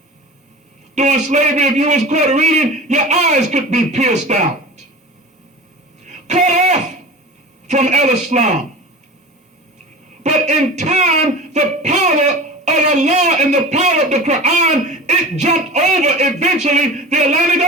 During slavery, if you was caught reading, your eyes could be pierced out. Cut off from El-Islam. But in time, the power of Allah and the power of the Quran, it jumped over eventually the Atlantic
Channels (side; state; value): both; normal; correlation 0.34